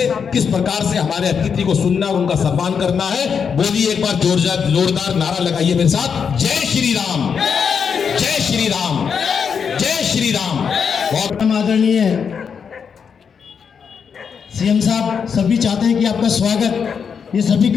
किस प्रकार से हमारे अतिथि को सुनना और उनका सम्मान करना है। बोलिए एक बार जोरदार नारा लगाइए मेरे साथ, जय श्री राम, जय श्री राम, जय श्री राम। बहुत आदरणीय सीएम साहब, सभी चाहते हैं कि आपका स्वागत ये सभी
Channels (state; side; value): quieter; right; 6.6 dB